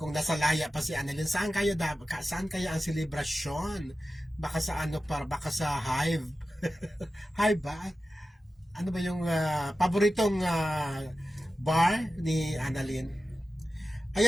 nasa laya pa si Annalyn, saan kaya ang selebrasyon? Baka sa baka sa Hive. Hive ba? Ano ba yung paboritong bar ni Annalyn?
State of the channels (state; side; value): normal; both; correlation 0.94